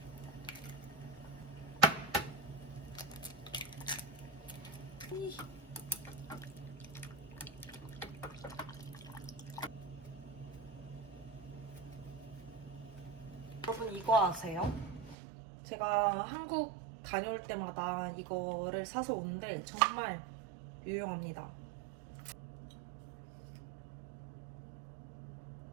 여러분 이거 아세요? 제가 한국 다녀올 때마다 이거를 사서 오는데 정말 유용합니다.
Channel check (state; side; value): drops out; left; at 15.2 s